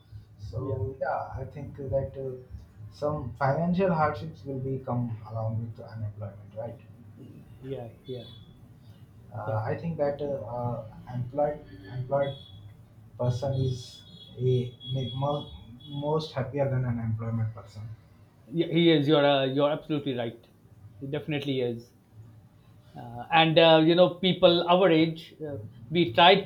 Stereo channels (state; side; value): identical; both; correlation 1.00